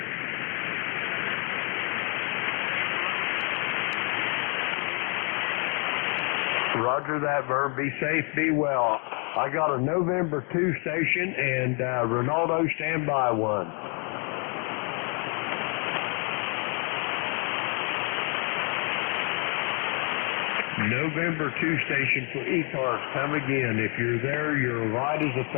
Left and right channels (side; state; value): right; quieter; 36.9 dB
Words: Roger that, Vern. Be safe, be well. I got a November 2 station, and Ronaldo, stand by one. November 2 station for ECARS, come again. If you're there, you're light as a